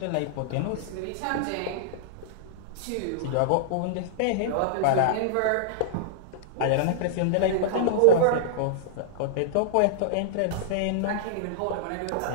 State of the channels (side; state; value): both; different; correlation -0.01